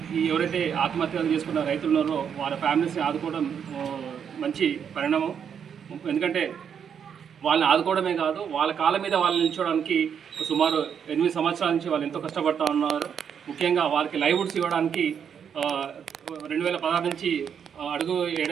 ఎవరైతే ఆత్మహత్యలు చేసుకున్న రైతులు ఉన్నారో వాళ్ళ ఫ్యామిలీస్ని ఆదుకోవడం మంచి పరిణామం. ఎందుకంటే వాళ్ళని ఆదుకోవడమే కాదు, వాళ్ళ కాళ్ళ మీద వాళ్ళని నిల్చోవడానికి సుమారు 8 సంవత్సరాల నుంచి వాళ్ళు ఎంతో కష్టపడుతూ ఉన్నారు. ముఖ్యంగా వాళ్ళకి లైవ్వుడ్స్ ఇవ్వడానికి 2016 నుంచి అడుగు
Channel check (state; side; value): quieter; left; 7.7 dB